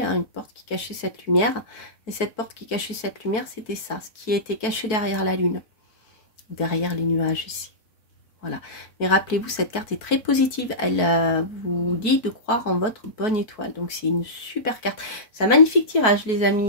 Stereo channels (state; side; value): late; right; 4.5 ms